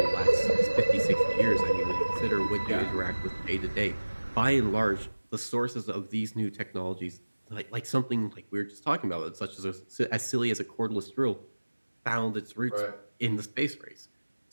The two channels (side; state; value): both; inverted; correlation -1.00